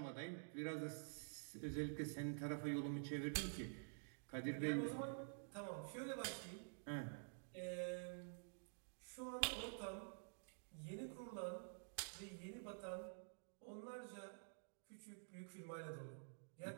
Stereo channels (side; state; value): left; silent; digital silence